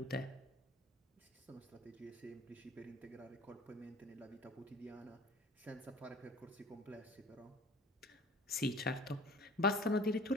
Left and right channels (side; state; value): both; normal; correlation 0.45